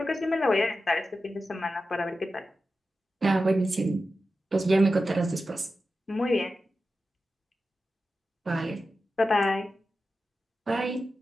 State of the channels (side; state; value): both; normal; correlation 0.92